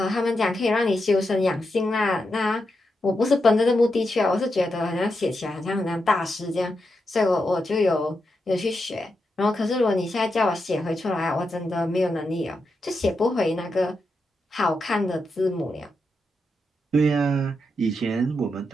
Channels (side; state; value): both; normal; correlation 0.86